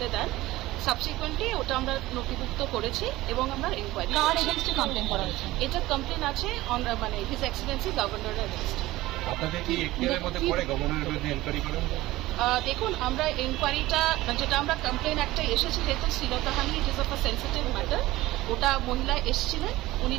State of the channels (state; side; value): quieter; left; 17.7 dB